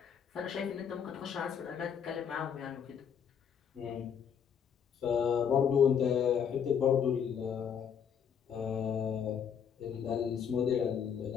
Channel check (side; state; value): right; quieter; 7.7 dB